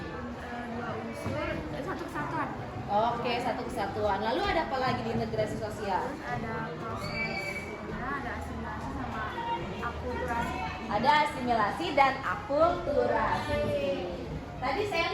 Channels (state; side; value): identical; both; correlation 1.00